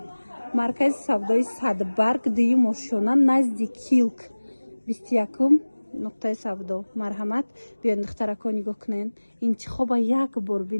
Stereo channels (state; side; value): inverted; both; correlation -1.00